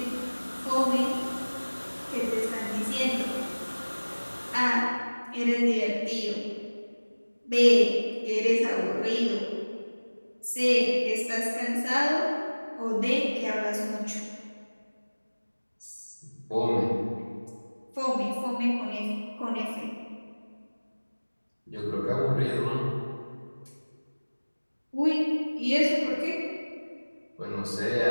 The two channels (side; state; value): both; inverted; correlation -1.00